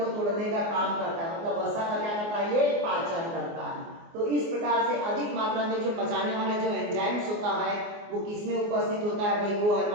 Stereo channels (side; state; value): left; late; 24 ms